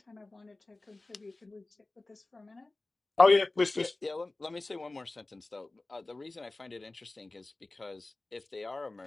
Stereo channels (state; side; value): quieter; right; 3.0 dB